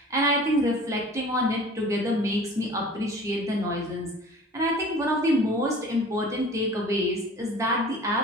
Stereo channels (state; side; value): normal; both; correlation 0.44